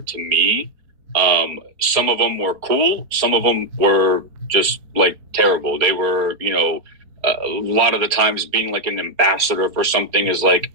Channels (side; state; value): left; late; 4.2 ms